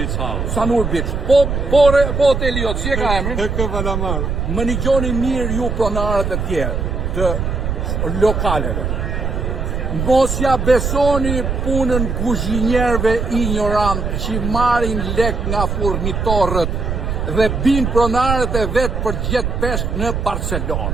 House. Sanur Beach. Po hoteli jo, si e ka emrin? Tek Valamar. Më një gjoni mirë ju pronarët e tjerë të lokaleve. Mos ja besoni punën kuzhinjerëve ignorant që marrin lek nga furnitorët dhe bin pronarët e vetë për gjetë peshk në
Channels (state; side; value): noise; right; rumble, 2 dB below the sound